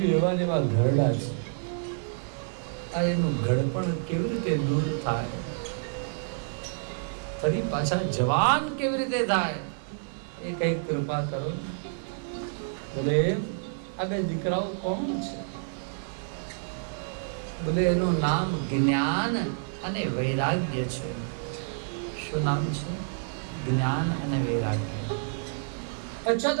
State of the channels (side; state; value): left; silent; 59 dB below the other